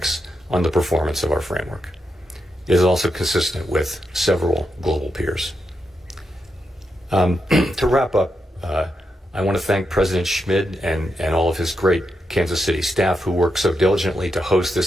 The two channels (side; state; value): both; normal; correlation 0.85